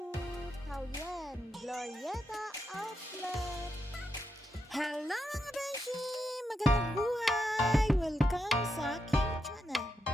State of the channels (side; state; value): both; normal; correlation 0.84